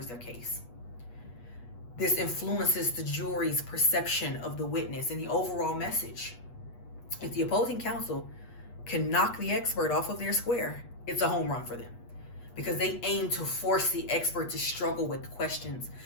their case. This influences the jury's perception of the witness and the overall message. If the opposing counsel can knock the expert off of their square, it's a home run for them because they aim to force the expert to struggle with questions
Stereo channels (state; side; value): late; right; 8.3 ms